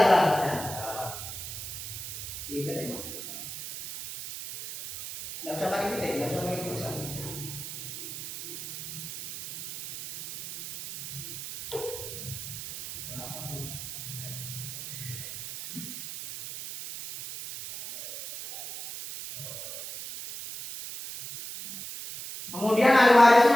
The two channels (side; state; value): right; noise; hiss, 9 dB below the sound